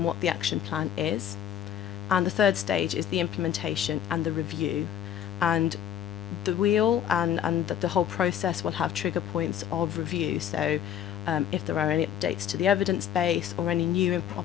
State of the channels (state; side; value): quieter; right; 10.0 dB